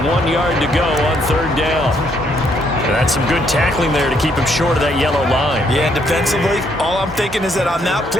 1 yard to go on 3rd down. And that's some good tackling there to keep him short of that yellow line. Yeah, and defensively, all I'm thinking is that on that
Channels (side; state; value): both; normal; correlation 0.71